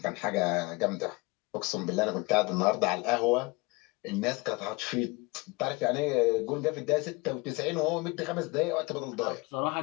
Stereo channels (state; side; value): quieter; right; 25.8 dB